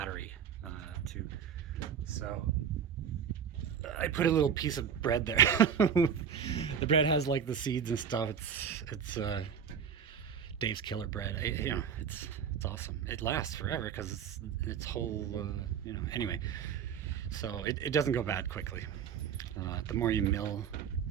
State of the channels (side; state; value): left; quieter; 7.8 dB